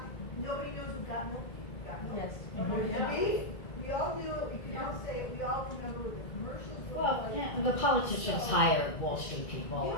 nobody knows what got milk? Got milk. Yes. And there's the beef. We all knew it, we can all say it, we all remember what the commercials were Well, like. yeah, the politicians hire Wall Street people,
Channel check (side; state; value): right; late; 1.9 ms